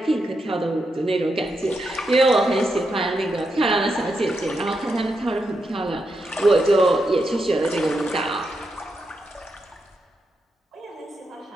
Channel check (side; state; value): both; normal; correlation 0.84